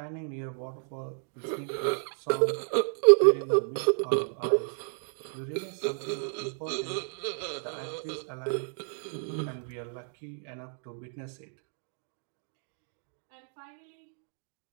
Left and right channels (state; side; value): silent; left; 57 dB below the other